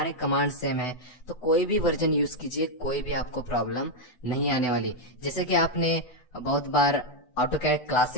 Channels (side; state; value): right; late; 8.1 ms